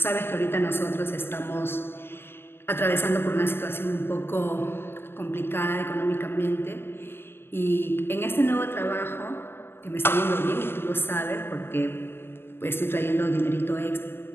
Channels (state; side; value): late; right; 0.11 ms